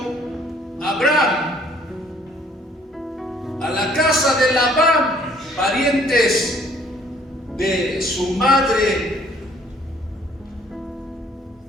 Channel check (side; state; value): both; normal; correlation 0.61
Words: Abraham, a la casa de Labán, parientes de su madre,